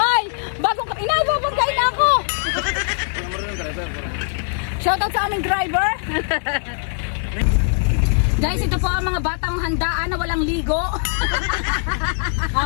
bagong inababagkain na ako. Shoutout sa aming driver. Guys, ito po ang mga batang handaan na walang ligo.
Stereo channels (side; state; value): right; silent; 65 dB below the other